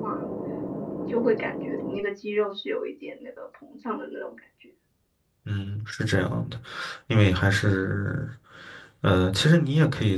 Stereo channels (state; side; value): identical; both; correlation 1.00